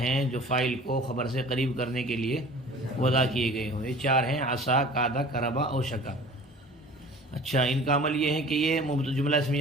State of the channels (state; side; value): normal; both; correlation 0.45